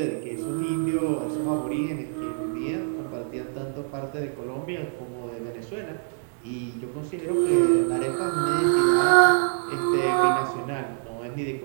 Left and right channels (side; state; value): left; silent; 61 dB below the other